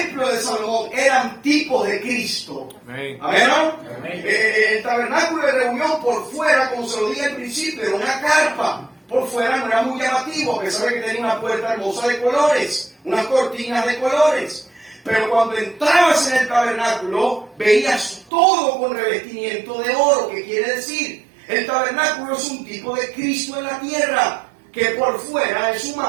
de Salomón eran tipos de Cristo. Amén. Amén, ¿no? El tabernáculo de reunión por fuera, como se lo dije al principio, era una carpa. Por fuera no era muy llamativo, a pesar de que tenía una puerta hermosa de colores, unas cortinas de colores. Pero cuando entrabas en el tabernáculo, veías todo con revestimiento de oro. ¿Qué quiere decir? El tabernáculo es un tipo de Cristo en la tierra, que por fuera es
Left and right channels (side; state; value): left; drops out; at 18.3 s